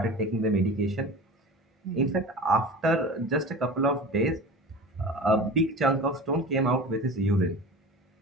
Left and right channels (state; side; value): normal; both; correlation 0.35